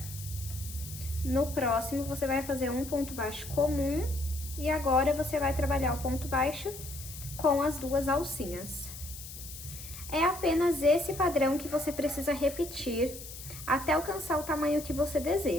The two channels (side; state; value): left; noise; hiss, 12 dB below the sound